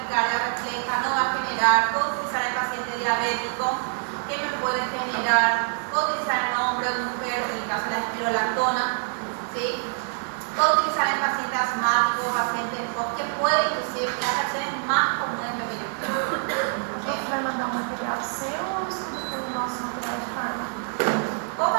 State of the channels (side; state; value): left; silent; 61 dB below the other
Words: refleja, no va a generar. Puedo utilizar el paciente diabético, que me puede generar. Puedo utilizar en hombre o mujer, en el caso de la espirolactona, ¿sí? Puedo utilizar en pacientes asmáticos, pacientes POC, que puede inclusive las reacciones más comunes de lo que yo quiero. Você vai mandar um material seu ou estuda pelo nosso material de fármaco? Puedo